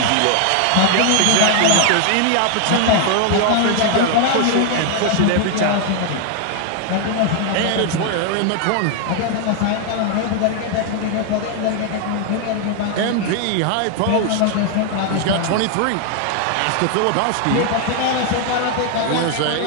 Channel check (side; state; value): both; different; correlation 0.00